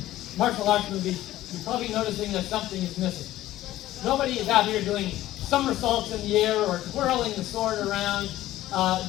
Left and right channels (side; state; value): right; quieter; 14.8 dB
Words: martial arts movies, you're probably noticing that something is missing. Nobody is out here doing somersaults in the air or twirling the sword around,